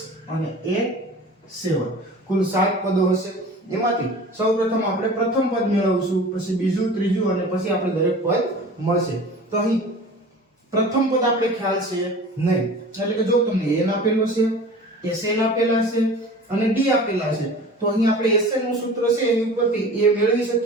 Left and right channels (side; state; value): both; normal; correlation 0.40